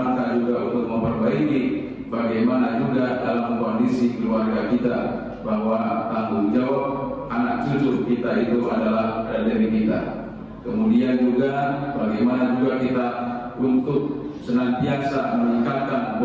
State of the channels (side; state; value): both; identical; correlation 1.00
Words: juga untuk memperbaiki bagaimana juga dalam kondisi keluarga kita, bahwa tanggung jawab anak cucu kita itu adalah dari kita. Kemudian juga bagaimana juga kita untuk senantiasa meningkatkan